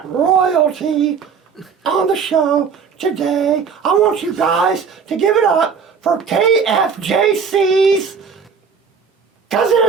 royalty on the show today. I want you guys to give it up for KFJC's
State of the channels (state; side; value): quieter; left; 6.1 dB